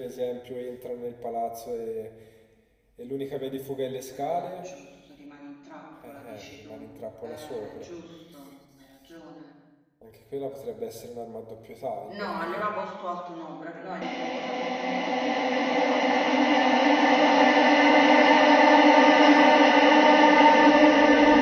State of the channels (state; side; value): identical; both; correlation 1.00